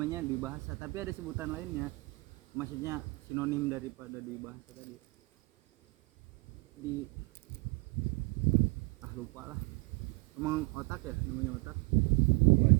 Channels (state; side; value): quieter; left; 27.9 dB